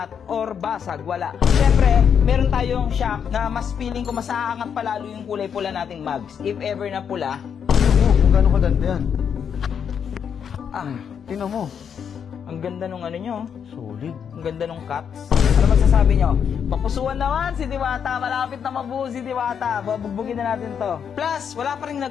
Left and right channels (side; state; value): right; quieter; 7.6 dB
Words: or basag, wala. Siyempre, meron tayong shock na mas feeling ko mas aangat palalo yung kulay pula nating mags. If ever na pula. Kung gano'ng kaganda yan. Tingnan mo. Ang ganda nung ano nyo. Solid. Ang ganda nung cuts. Ano magsasabi nyo? Papusuan naman si Diwata. Malapit na mabuo si Diwata. Babugbugin na natin to. Plus, wala pa rin